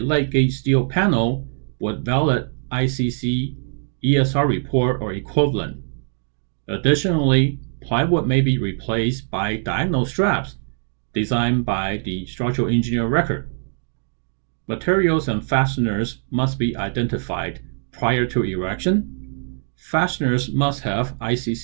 steel panel with valid ICC ESR report or equivalent. Additionally, plywood may be replaced by diagonal straps designed by the structural engineer record. Materials and fasteners must be identified prior to erection. Fasteners must have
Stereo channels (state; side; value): silent; left; digital silence